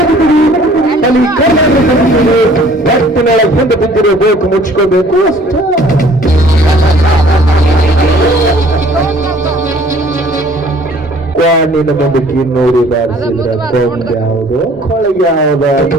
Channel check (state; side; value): normal; both; correlation 0.55